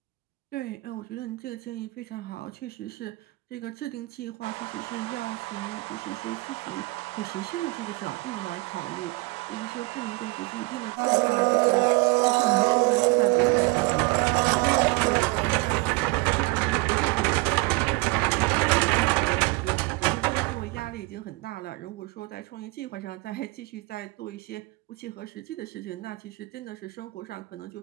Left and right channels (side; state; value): left; quieter; 24.8 dB